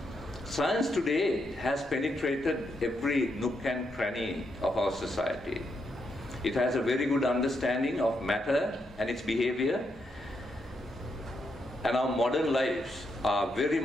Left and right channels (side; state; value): both; normal; correlation 0.80